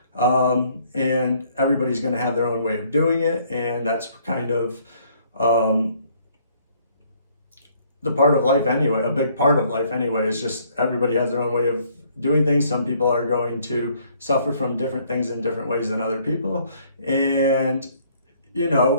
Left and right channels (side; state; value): both; inverted; correlation -0.64